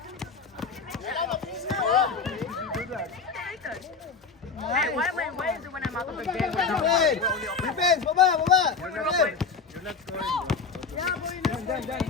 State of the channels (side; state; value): right; quieter; 5.0 dB